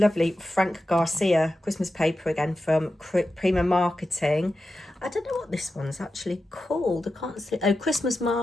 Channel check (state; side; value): normal; both; correlation 0.91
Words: Frank Garcia Christmas paper again from Prima Marketing. I don't know what this one's actually called. I can't see. Oh, Christmas